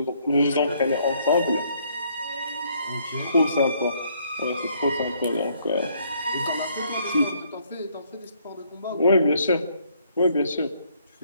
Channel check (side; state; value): both; inverted; correlation -0.67